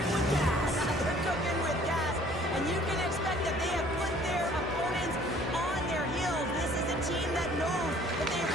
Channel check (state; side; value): normal; both; correlation 0.55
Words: with gas. They're cooking with gas, and you can expect that they have put their opponents on their heels. This is a team that knows that they've